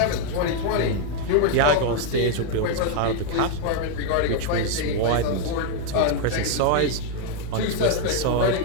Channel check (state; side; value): different; both; correlation 0.00